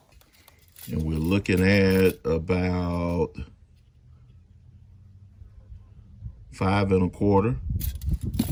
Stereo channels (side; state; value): both; identical; correlation 1.00